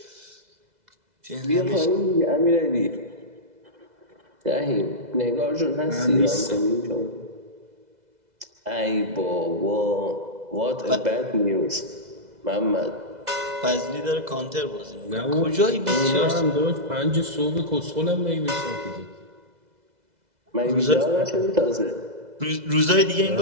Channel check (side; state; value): left; late; 2.0 ms